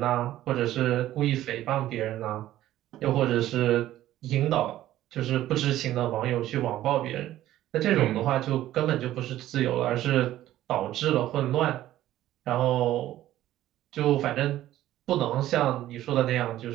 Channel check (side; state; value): left; quieter; 13.9 dB